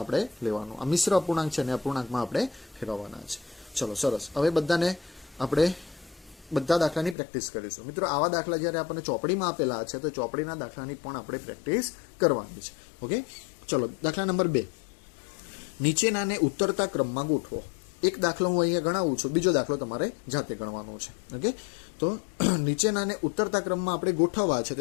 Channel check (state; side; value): drops out; right; at 7.2 s